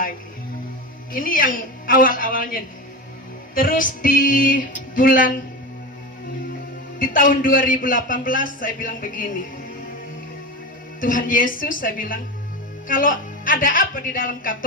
Ini yang awal-awalnya. Terus di tahun 2018 saya bilang begini, Tuhan Yesus, saya bilang, kalau ada apa di dalam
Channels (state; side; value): normal; both; correlation 0.23